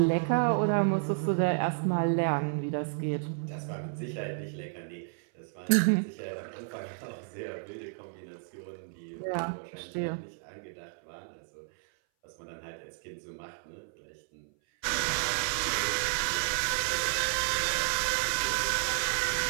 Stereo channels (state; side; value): silent; left; 57 dB below the other